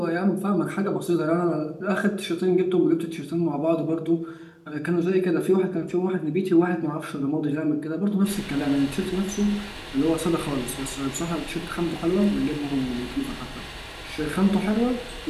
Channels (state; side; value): identical; both; correlation 1.00